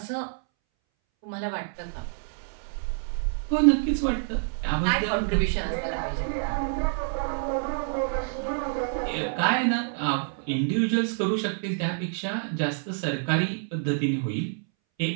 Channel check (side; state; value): left; silent; 60 dB below the other